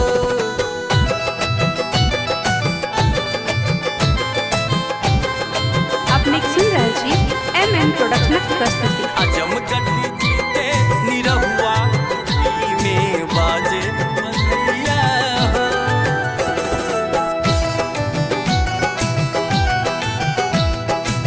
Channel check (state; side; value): identical; both; correlation 1.00